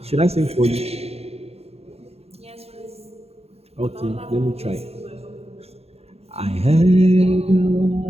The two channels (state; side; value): late; left; 0.30 ms